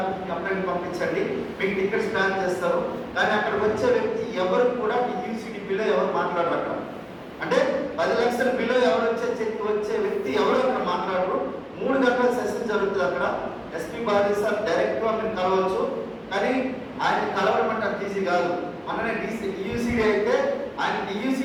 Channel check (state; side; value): identical; both; correlation 1.00